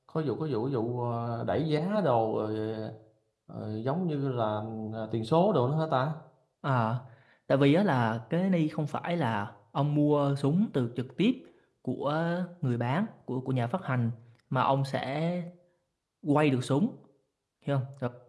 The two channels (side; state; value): both; identical; correlation 1.00